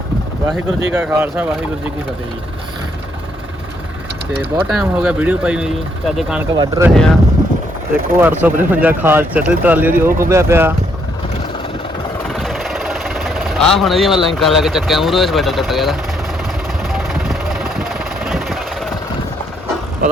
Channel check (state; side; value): normal; both; correlation 0.72